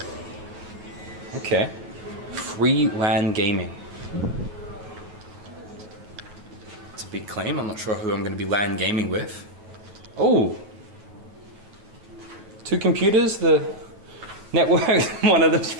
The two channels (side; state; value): left; late; 9.5 ms